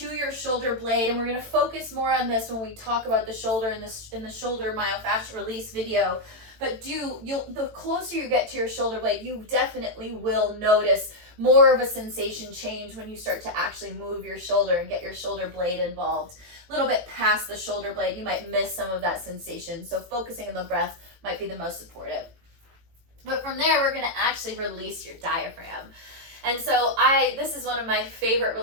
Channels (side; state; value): left; late; 18 ms